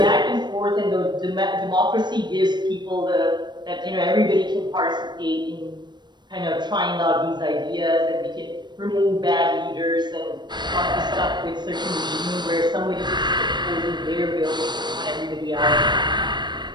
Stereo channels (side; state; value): left; late; 0.21 ms